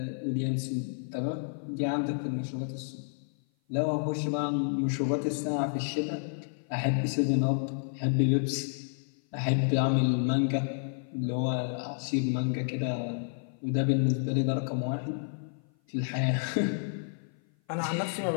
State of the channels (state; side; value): silent; right; 55 dB below the other